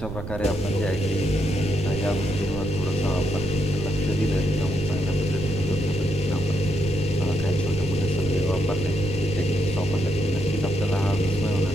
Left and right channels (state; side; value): noise; right; rumble, 8 dB below the sound